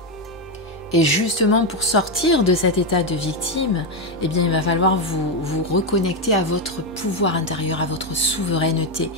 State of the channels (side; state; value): both; normal; correlation 0.07